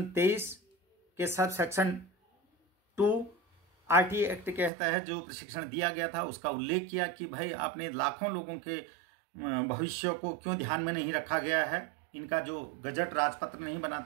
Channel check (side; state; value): left; drops out; at 4.7 s